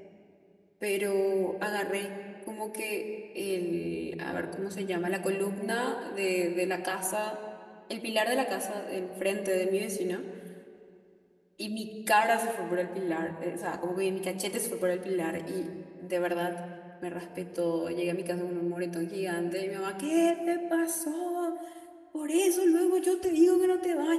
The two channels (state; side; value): identical; both; correlation 1.00